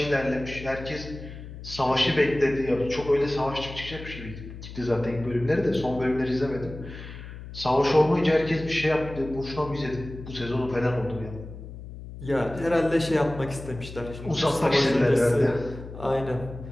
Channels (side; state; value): left; noise; hum, 12 dB below the sound